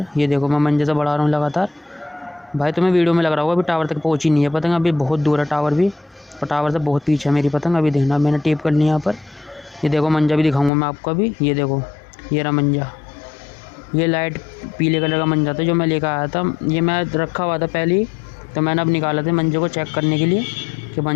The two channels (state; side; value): drops out; right; at 10.7 s